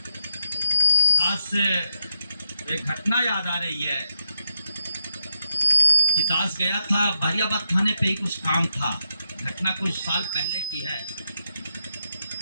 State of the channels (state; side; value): inverted; both; correlation -0.82